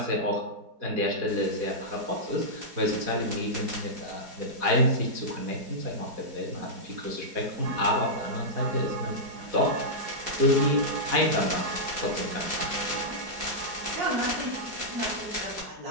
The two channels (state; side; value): late; left; 4.8 ms